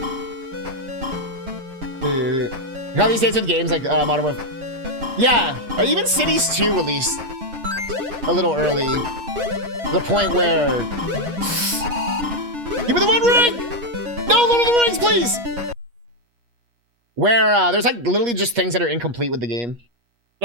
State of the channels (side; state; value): left; late; 8.4 ms